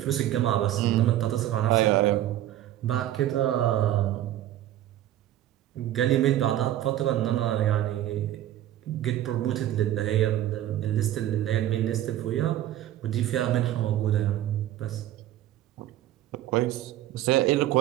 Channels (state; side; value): quieter; left; 13.0 dB